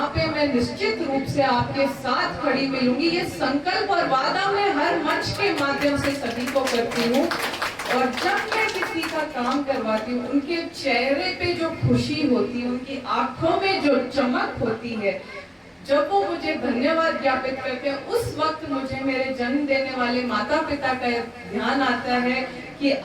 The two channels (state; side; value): identical; both; correlation 1.00